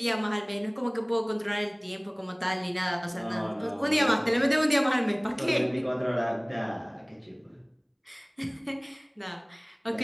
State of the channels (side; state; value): both; identical; correlation 1.00